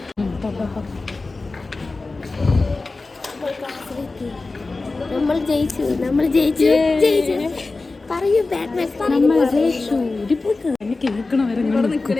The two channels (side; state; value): right; quieter; 3.6 dB